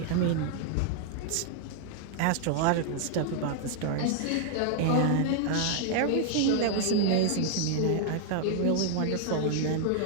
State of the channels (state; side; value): different; both; correlation 0.00